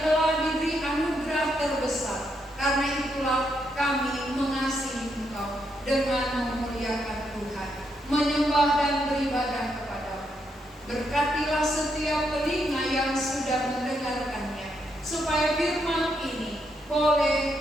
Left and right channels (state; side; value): normal; both; correlation 0.79